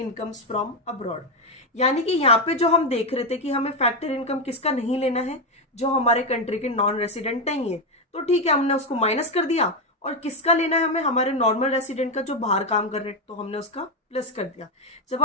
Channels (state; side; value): normal; both; correlation 0.06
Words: फ्रॉम अब्रॉड। यानी कि यहाँ पे जो हम देख रहे थे कि हमें फैक्टर इनकम किसका नहीं लेना है, जो हमारे कंट्री के नॉन रेसिडेंट नहीं है, तो ठीक है हमने उसको माइनस कर दिया। और किसका लेना है हमें, हमारे नॉर्मल रेसिडेंट का जो बाहर काम कर रहे हैं, तो हमने उसका प्लस कर दिया। जब